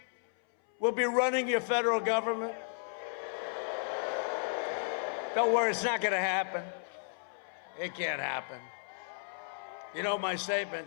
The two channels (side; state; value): right; silent; 55 dB below the other